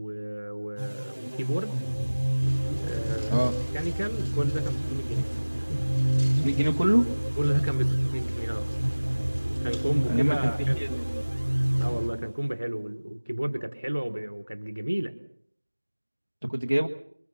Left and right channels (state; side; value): inverted; both; correlation -1.00